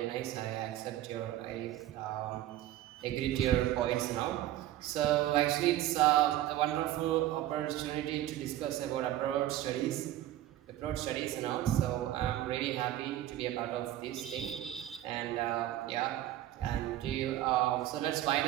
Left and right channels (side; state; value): left; quieter; 13.7 dB